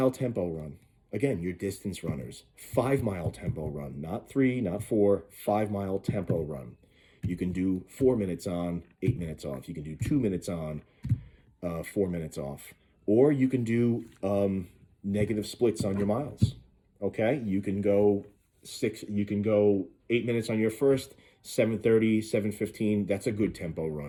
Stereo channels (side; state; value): both; identical; correlation 1.00